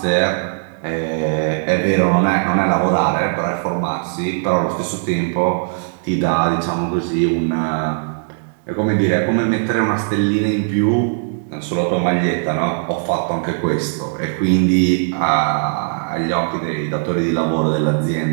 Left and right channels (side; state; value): left; silent; digital silence